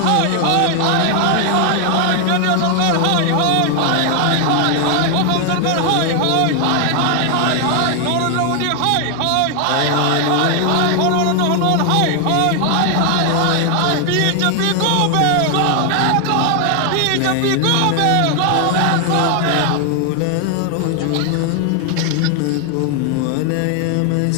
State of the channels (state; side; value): different; both; correlation 0.00